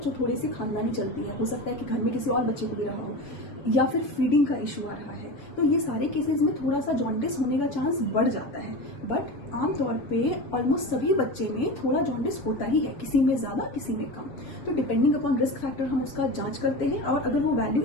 थोड़ी सी खानदानी चलती है, हो सकता है कि घर में किसी और बच्चे को भी रहा हो, या फिर फीडिंग का इशू आ रहा है, तो ये सारे केसेस में थोड़ा सा जॉन्डिस होने का चांस बढ़ जाता है। बट आमतौर पे ऑलमोस्ट सभी बच्चे में थोड़ा जॉन्डिस होता ही है, किसी में ज़्यादा किसी में कम। तो डिपेंडिंग अपॉन रिस्क फैक्टर हम उसका जांच करते हैं, और अगर वो वैल्यू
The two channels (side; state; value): right; late; 7.0 ms